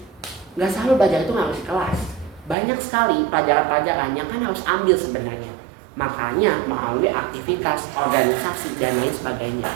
Nggak selalu belajar itu nggak harus di kelas. Banyak sekali pelajaran-pelajaran yang kan harus ambil sebenarnya. Makanya melalui aktivitas, organisasi, dan lain sebagainya.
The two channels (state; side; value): drops out; left; at 2.6 s